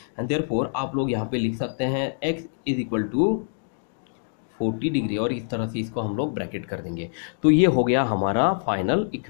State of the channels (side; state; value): right; silent; digital silence